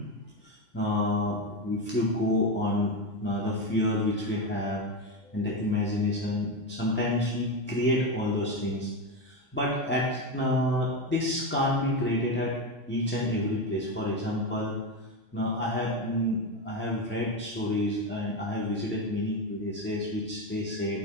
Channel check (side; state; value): both; normal; correlation 0.13